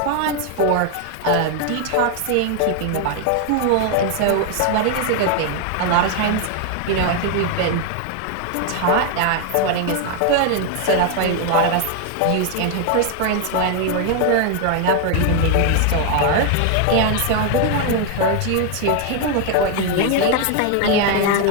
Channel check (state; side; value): different; both; correlation 0.00